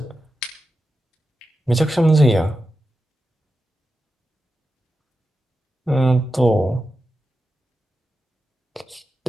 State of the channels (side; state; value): both; normal; correlation 0.90